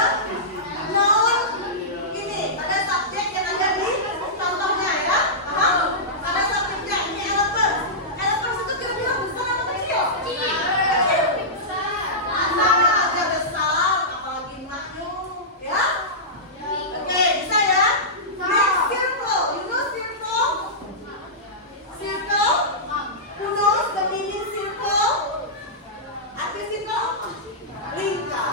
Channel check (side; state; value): both; normal; correlation -0.15